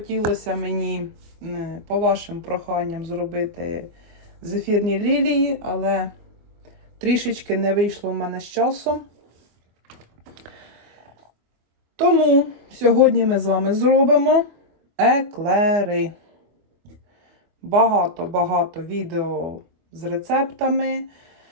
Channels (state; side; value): late; left; 24 ms